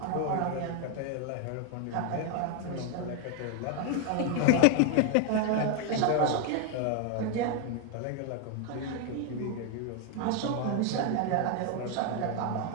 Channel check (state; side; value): different; both; correlation 0.01